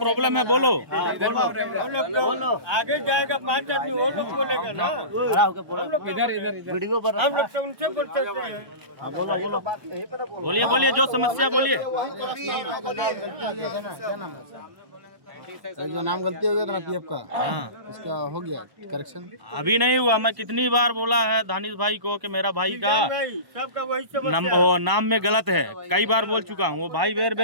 है बोलो। आगे जाएगा 5 आदमी वो लोग बोलेगा ना, वीडियो पर हम लोग तो उनसे बोल सकते हैं। बोलिए बोलिए, जो समस्या बोलिए। जो नाम गलती हो गया था ना पीएफ का, हाँ, उसका हो गया करेक्शन। अभी नहीं हुआ। मैं कितनी बार बोला है दानिश भाई को कि मेरा भाई का नहीं, सबका वही समस्या है। नाम में गलत है। कई बार बोल चुका हूँ। वो भाई बेर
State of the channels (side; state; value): left; late; 1.1 ms